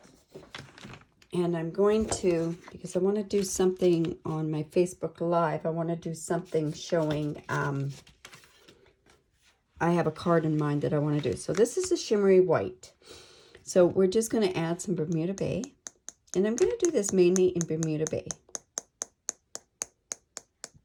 And I'm going to, because I want to do something on my Facebook Live, I want to do something showing, I have a card in mind that I want to do. So this is a shimmery white. So we're just going to add some Bermuda Bay. And I'm going to do this mainly in Bermuda Bay.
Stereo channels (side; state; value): both; identical; correlation 1.00